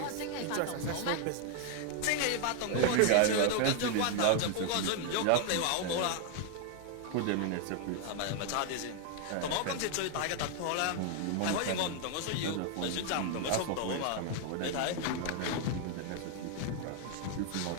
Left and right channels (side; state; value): both; different; correlation 0.00